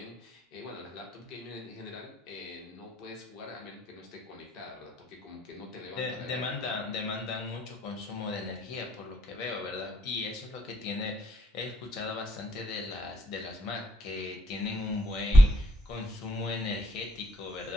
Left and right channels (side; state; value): both; normal; correlation 0.72